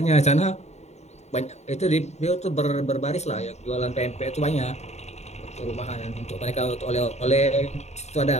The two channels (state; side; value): late; right; 0.32 ms